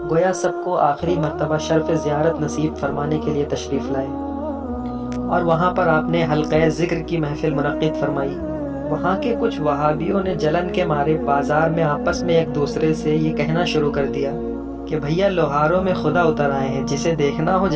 گویا سب کو آخری مرتبہ شرف زیارت نصیب فرمانے کے لیے تشریف لائے اور وہاں پر آپ نے حلقہ ذکر کی محفل منعقد فرمائی۔ وہاں کے کچھ وہابیوں نے جلن کے مارے بازار میں آپس میں ایک دوسرے سے یہ کہنا شروع کر دیا کہ بھیا لوہاروں میں خدا اتر آئے ہیں، جسے دیکھنا ہو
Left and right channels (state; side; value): identical; both; correlation 1.00